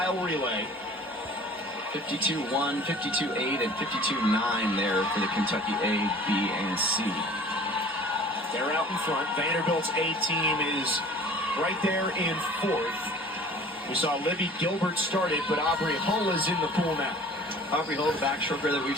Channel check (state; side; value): normal; both; correlation 0.46